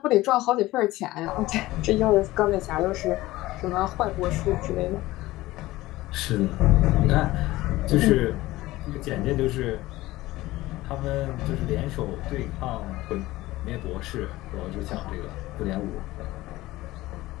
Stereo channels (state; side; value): quieter; right; 17.8 dB